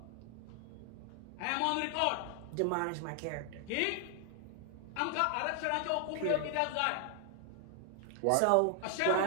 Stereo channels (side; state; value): both; different; correlation 0.00